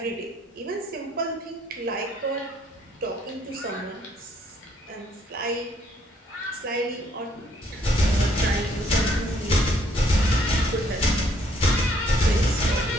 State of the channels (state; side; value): normal; both; correlation 0.67